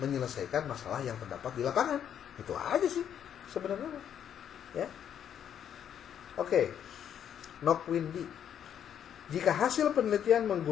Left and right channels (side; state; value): right; quieter; 9.2 dB